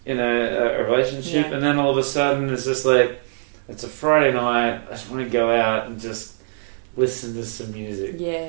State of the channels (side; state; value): left; silent; digital silence